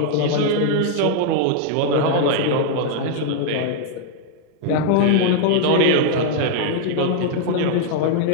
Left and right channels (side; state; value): both; different; correlation 0.00